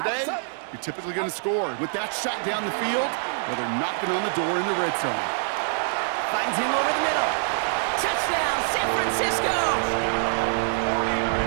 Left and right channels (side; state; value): left; silent; digital silence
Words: you're typically going to score. With that shot down the field, well, they're knocking on the door in the red zone. Finds him over the middle. Touchdown, San Francisco!